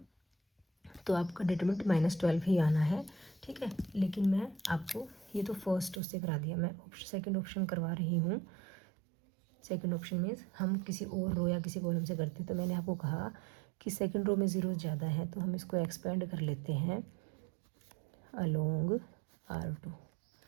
तो आपका डिटरमिनेंट -12 ही आना है। ठीक है, लेकिन मैं आपको ये तो फर्स्ट उससे करा दिया, मैं सेकंड ऑप्शन करवा रही हूँ। सेकंड ऑप्शन मीन्स हम किसी और रो या किसी कॉलम से करते हैं, तो मैंने आपको कहा कि सेकंड रो में जीरो ज़्यादा है तो हम इसको एक्सपेंड कर लेते हैं अलोंग R2।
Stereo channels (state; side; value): drops out; left; at 6.0 s